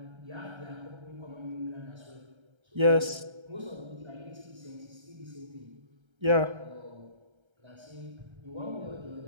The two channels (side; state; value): left; late; 1.3 ms